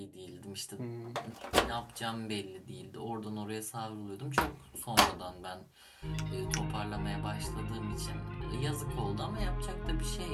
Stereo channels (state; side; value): identical; both; correlation 1.00